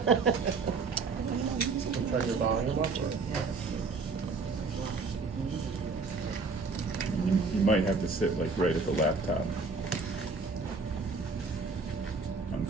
Turn your volume up. You might have to sit like right at the laptop.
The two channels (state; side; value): quieter; left; 4.3 dB